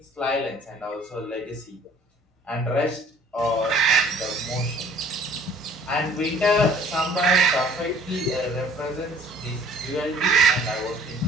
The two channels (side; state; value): both; normal; correlation 0.54